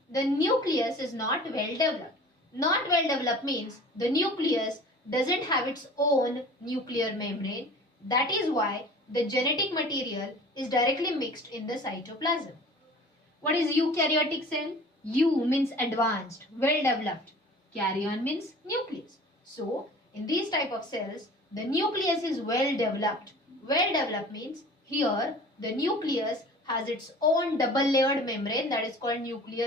the nucleus is not well developed. Not well developed means the nucleus doesn't have its own nuclear membrane. That is why the genetic material is directly mixed in the cytoplasm. What is eukaryotic cell? Eu means advanced, well developed. Karyon means nucleus. So, in these type of cells, the nucleus is well developed. Well developed means here the nucleus has its own double layered membrane, that is called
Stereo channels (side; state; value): both; normal; correlation 0.44